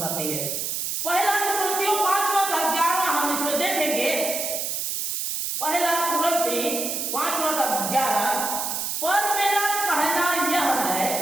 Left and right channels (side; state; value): right; noise; hiss, 2 dB below the sound